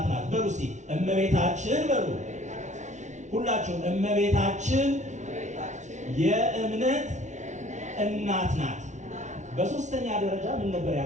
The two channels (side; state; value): left; late; 0.35 ms